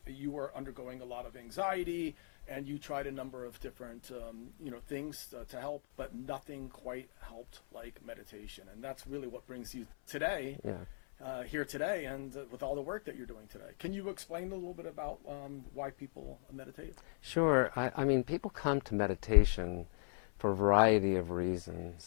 you were undergoing a lot of anxiety and you tried a number of different things to help, but nothing quite helped like meditation. And that's really what brings you today. Here today and with all the work that you're doing today. Can you explain a little bit about why people meditate? Sure. I mean, people come to meditation for a variety of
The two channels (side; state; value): right; silent; 52 dB below the other